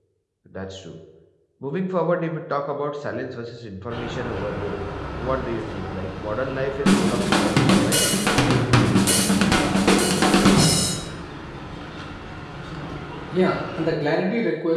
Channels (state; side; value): identical; both; correlation 1.00